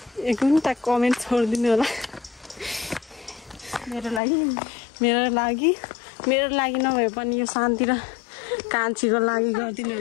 एक घन्टा कमेन्ट छोडिदिनु होला मेरो लागि नभए पनि यो शान्ति र कान्छीको लागि गरिदिनु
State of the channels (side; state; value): right; drops out; at 4.2 s